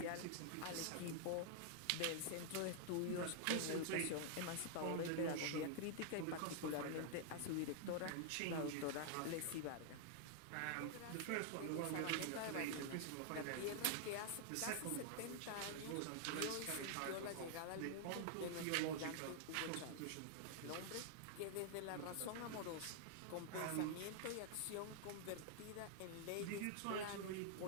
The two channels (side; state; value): both; different; correlation 0.00